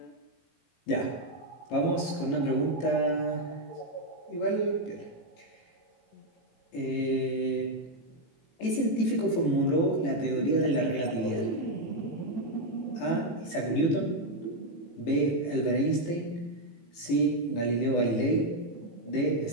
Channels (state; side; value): late; right; 18 ms